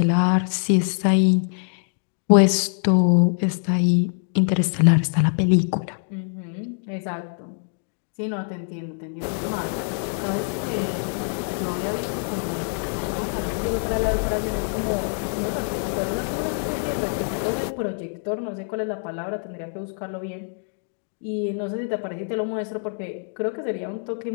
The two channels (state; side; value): silent; right; 62 dB below the other